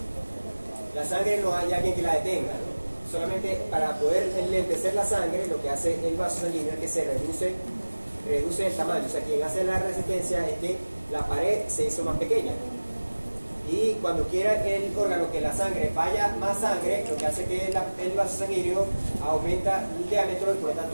la sangre no hay alguien que la detenga, ¿no? Solamente para poder enlentecer la sangre, lo que hace el vaso sanguíneo es que se reduce el tamaño. O sea, quien hace la resistencia es que la pared se hizo más pequeña. Y cuando quiera el órgano que la sangre vaya más sangre, lo que hace que el vaso sanguíneo aumenta el diámetro y por lo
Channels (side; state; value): both; inverted; correlation -1.00